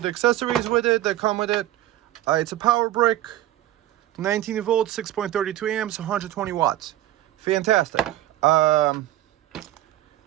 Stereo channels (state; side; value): quieter; left; 14.0 dB